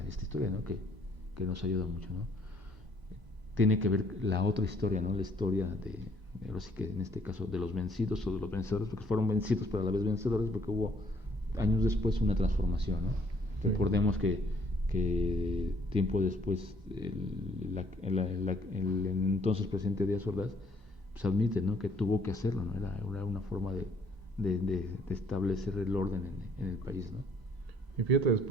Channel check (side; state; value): both; normal; correlation 0.63